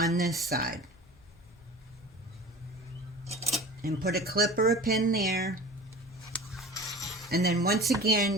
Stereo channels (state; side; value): normal; both; correlation 0.38